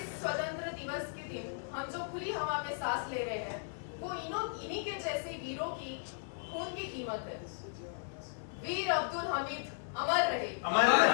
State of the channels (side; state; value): right; silent; 54 dB below the other